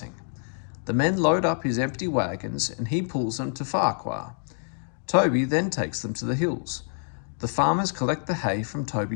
The men load up his empty wagons and he pulls them to Farquhar. Toby then takes them to the hills. The farmers collect the hay from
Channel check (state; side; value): silent; right; digital silence